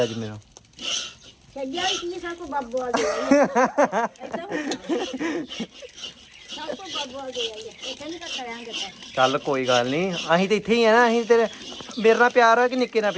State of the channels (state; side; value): identical; both; correlation 1.00